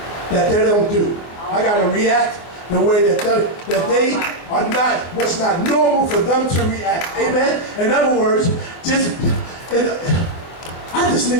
that they don't do. I got to react the way that they are not, what's not normal for them to react. Amen. In other words, I just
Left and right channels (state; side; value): late; right; 24 ms